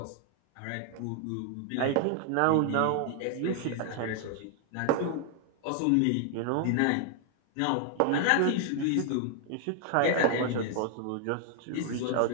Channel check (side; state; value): both; different; correlation 0.00